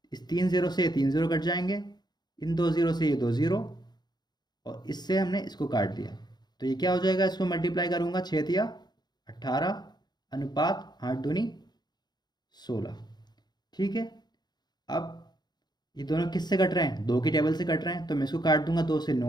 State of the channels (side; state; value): right; late; 0.20 ms